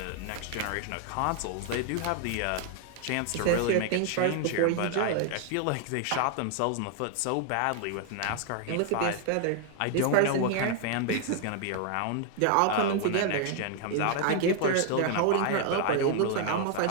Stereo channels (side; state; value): both; different; correlation 0.00